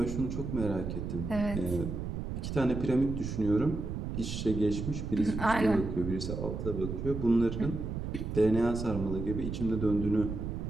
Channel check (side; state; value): right; noise; rumble, 5 dB below the sound